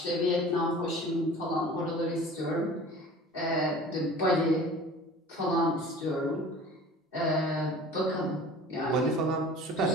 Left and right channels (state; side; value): normal; both; correlation 0.43